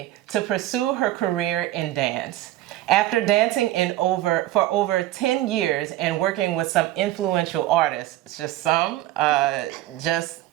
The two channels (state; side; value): quieter; left; 15.1 dB